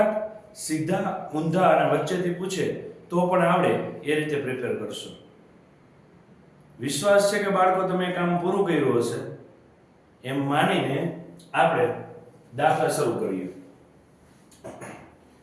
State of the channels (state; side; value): identical; both; correlation 1.00